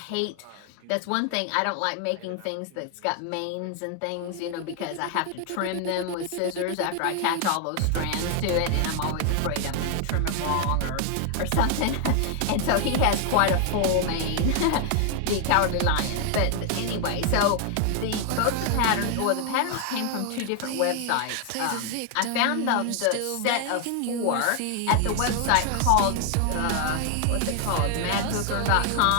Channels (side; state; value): both; different; correlation 0.00